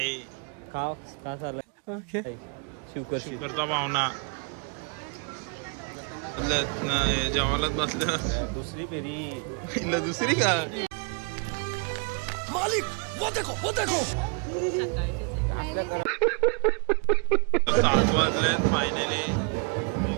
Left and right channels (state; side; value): quieter; left; 36.9 dB